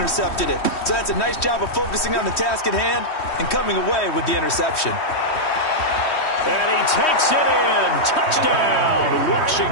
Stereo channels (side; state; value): right; late; 3.1 ms